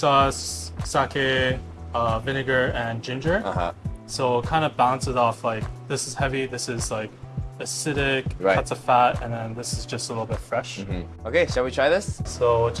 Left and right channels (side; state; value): both; identical; correlation 1.00